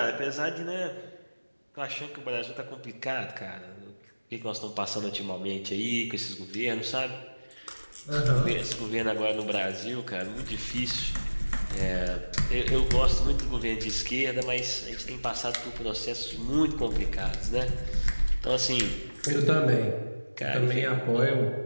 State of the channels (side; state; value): both; inverted; correlation -1.00